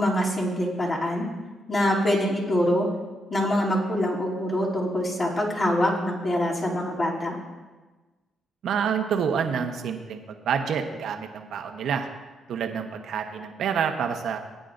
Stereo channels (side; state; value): both; normal; correlation 0.78